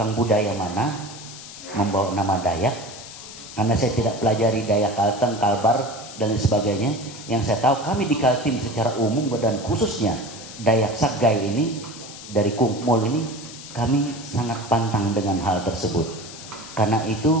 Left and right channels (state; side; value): noise; left; hiss, 14 dB below the sound